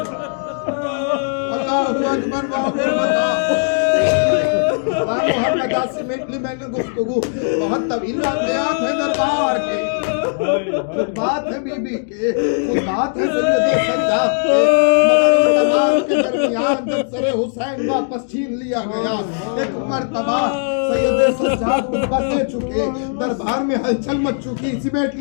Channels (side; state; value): right; silent; digital silence